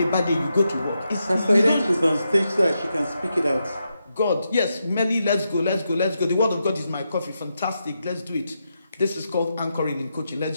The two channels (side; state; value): both; inverted; correlation -0.85